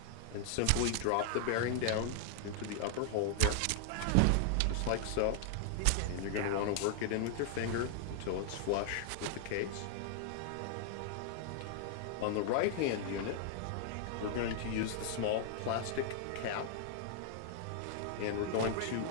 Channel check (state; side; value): different; both; correlation 0.00